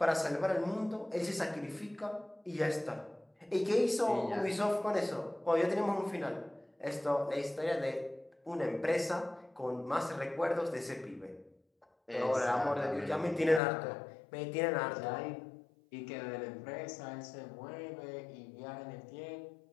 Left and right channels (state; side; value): drops out; right; at 13.6 s